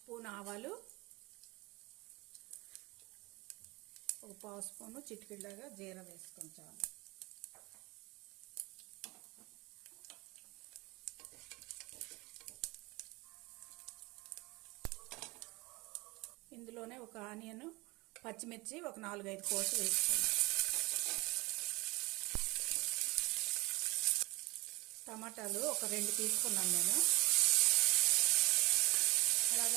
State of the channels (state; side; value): quieter; left; 22.8 dB